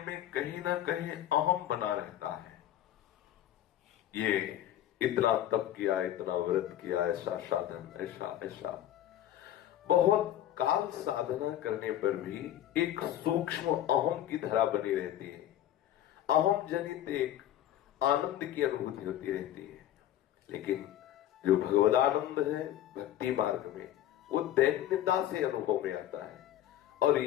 में कहीं ना कहीं अहम बना रहता है। ये इतना तप किया, इतना व्रत किया, ऐसा साधन, ऐसा ऐसा, बहुत काल साधना करने पर भी एक सूक्ष्म अहम की धारा बनी रहती है। अहम जनित एक आनंद की अनुभूति होती रहती है। लेकिन जो भगवदानंद है भक्ति मार्ग में, वो दैन्यता से अनुभव में आता है। और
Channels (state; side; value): quieter; right; 12.2 dB